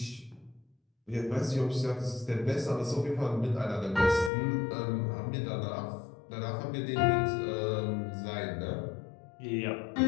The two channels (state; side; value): drops out; right; at 4.3 s